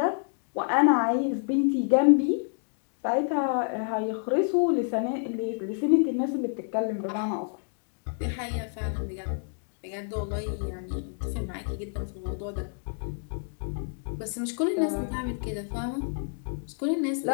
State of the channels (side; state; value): right; silent; 59 dB below the other